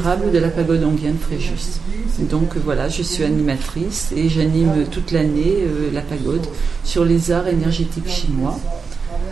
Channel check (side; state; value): left; quieter; 5.2 dB